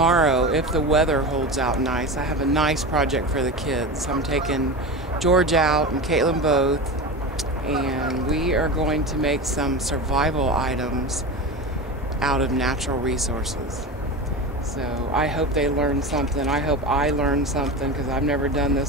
if the weather holds out nice. I have a nice project for the kids. I'm taking George out and Caitlin both, and we are going to make some survival items out of natural resources. So I hope they learn something. I hope I learn something because I've never done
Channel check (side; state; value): both; normal; correlation 0.25